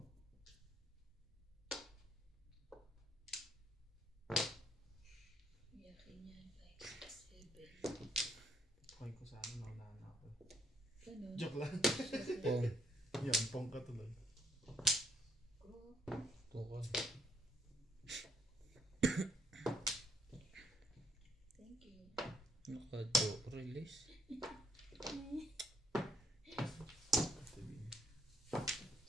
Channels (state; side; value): normal; both; correlation 0.70